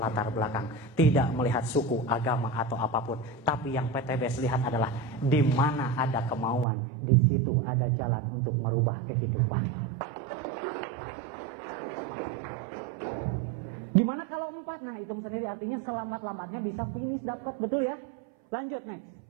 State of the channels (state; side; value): drops out; left; at 6.7 s